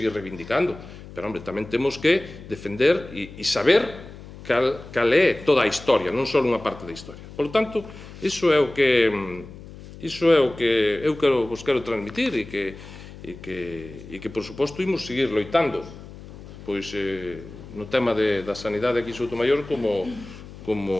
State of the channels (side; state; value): left; noise; hum, 16 dB below the sound